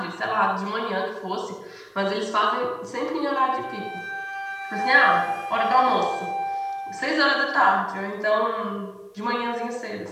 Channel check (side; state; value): both; identical; correlation 1.00